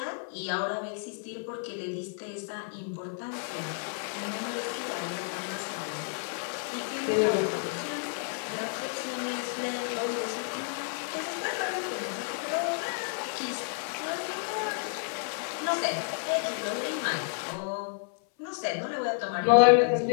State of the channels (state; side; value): silent; right; 57 dB below the other